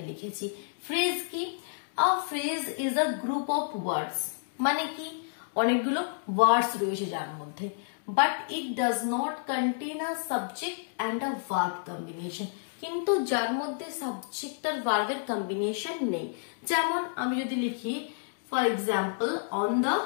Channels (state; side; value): silent; right; digital silence